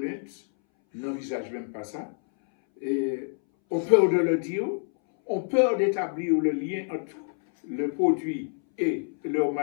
n'envisagent même pas ça, et ont peur de le dire, ont peur d'établir le lien entre le produit et leur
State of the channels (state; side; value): silent; right; 60 dB below the other